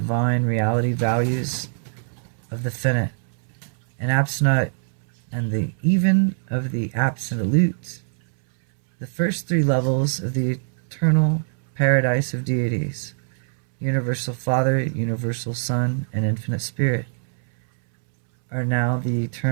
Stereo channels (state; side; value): silent; left; 63 dB below the other